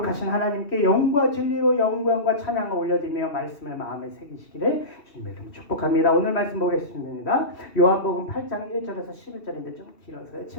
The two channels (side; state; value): right; late; 2.7 ms